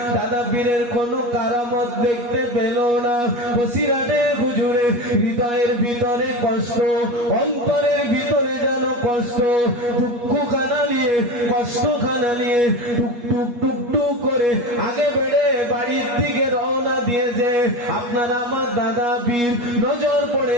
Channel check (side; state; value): left; late; 8.4 ms